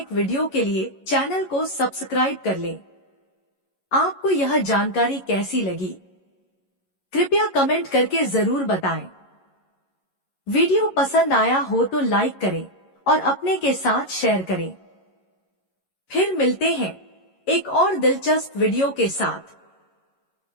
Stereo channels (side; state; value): right; late; 11 ms